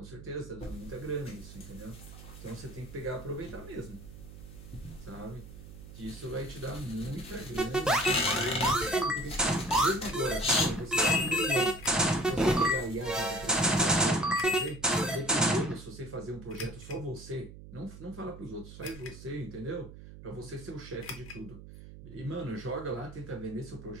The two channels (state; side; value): noise; right; hum, 15 dB below the sound